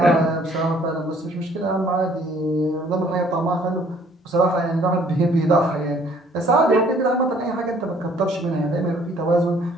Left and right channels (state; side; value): normal; both; correlation 0.59